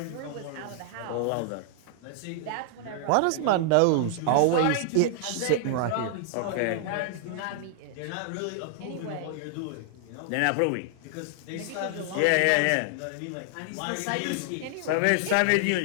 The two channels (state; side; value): different; both; correlation 0.00